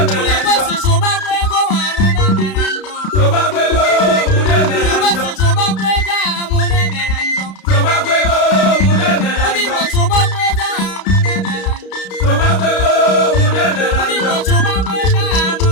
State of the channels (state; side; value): late; right; 32 ms